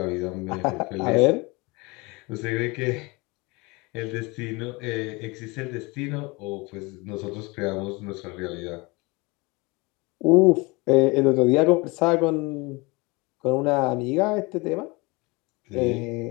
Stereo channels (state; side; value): quieter; right; 25.6 dB